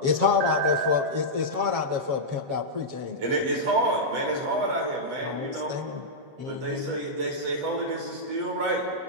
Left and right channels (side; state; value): left; late; 7.3 ms